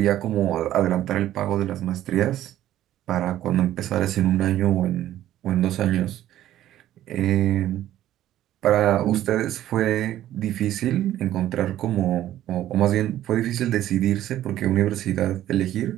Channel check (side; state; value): left; quieter; 12.9 dB